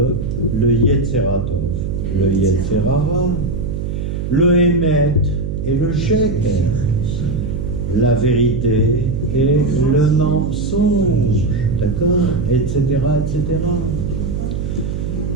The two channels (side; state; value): right; noise; hum, 3 dB below the sound